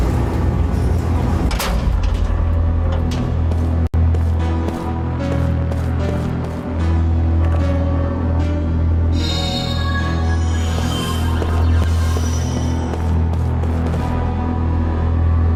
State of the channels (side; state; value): both; identical; correlation 1.00